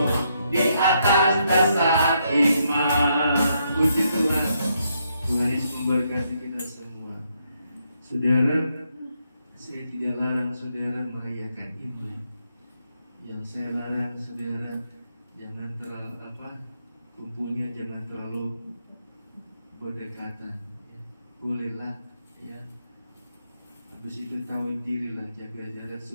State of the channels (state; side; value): inverted; both; correlation -0.77